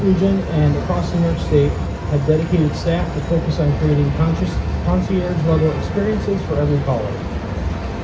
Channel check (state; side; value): identical; both; correlation 1.00